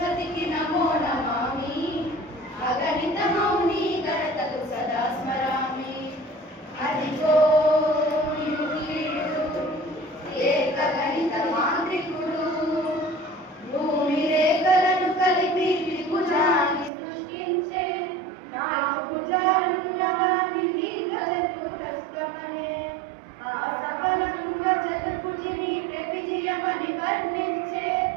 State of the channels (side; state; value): left; drops out; at 16.9 s